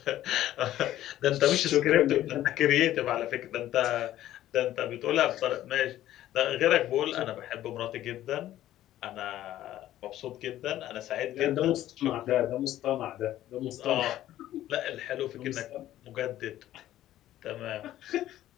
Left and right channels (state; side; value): quieter; right; 13.4 dB